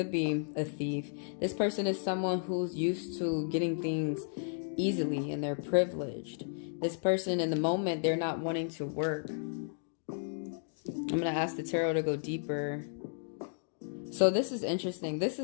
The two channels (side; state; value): right; silent; digital silence